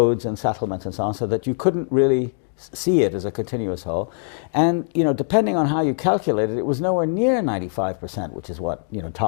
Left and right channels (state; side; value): silent; right; digital silence